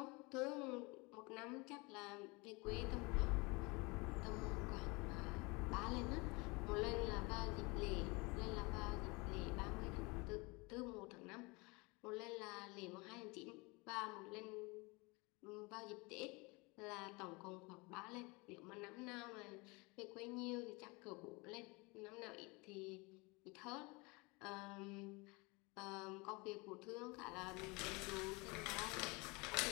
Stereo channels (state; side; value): quieter; right; 26.8 dB